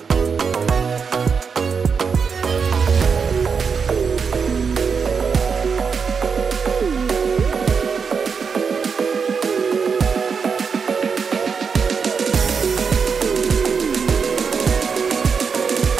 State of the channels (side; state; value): left; quieter; 5.8 dB